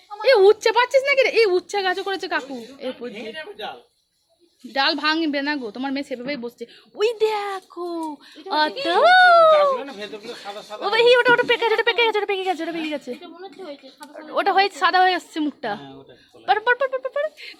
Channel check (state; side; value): identical; both; correlation 1.00